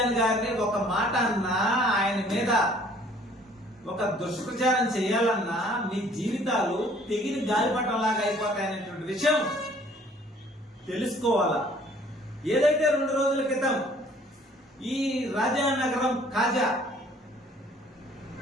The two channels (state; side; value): normal; both; correlation 0.57